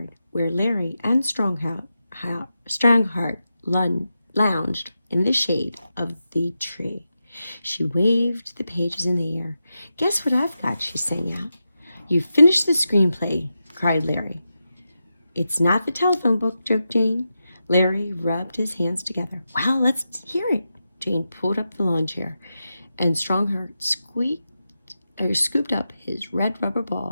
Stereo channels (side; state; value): both; inverted; correlation -0.89